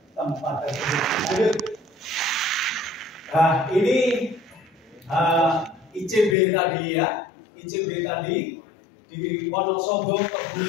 tempat tersebut. Nah, ini ICB tadi ya, ICB tadi di Wonosobo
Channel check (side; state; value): right; drops out; at 6.4 s